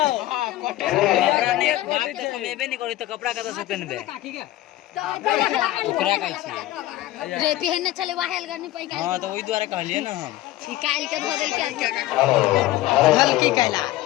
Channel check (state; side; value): quieter; right; 15.6 dB